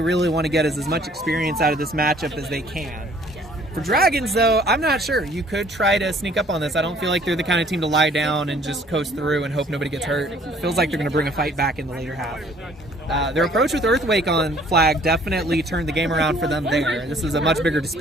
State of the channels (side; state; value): both; normal; correlation 0.57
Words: really want to get is as much experience out of this matchup as they can. For Dragons, though, I'm not sure. You could try to sneak up on this. I don't feel like they're the kind of team to lie down and just coast through and hope nobody gets hurt. It feels like they're going to bring a fight back in the later half. Their approach with Earthquake on flag definitely turned the game around for them there. This is a much bigger